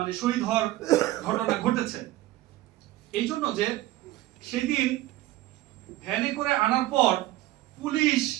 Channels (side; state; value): left; quieter; 16.2 dB